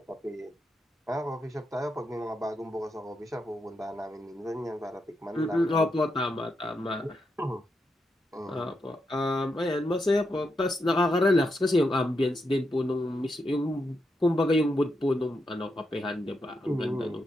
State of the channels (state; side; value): normal; both; correlation 0.84